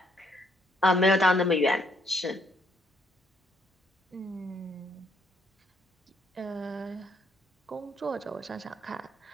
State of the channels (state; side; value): normal; both; correlation 0.70